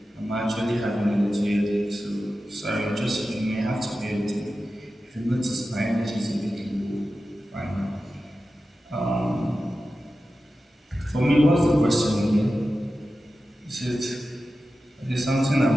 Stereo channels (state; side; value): normal; both; correlation 0.93